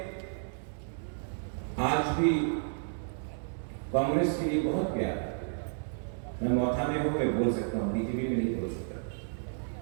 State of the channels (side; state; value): left; silent; digital silence